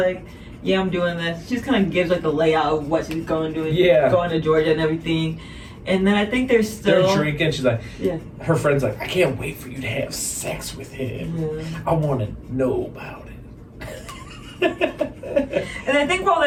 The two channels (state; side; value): identical; both; correlation 1.00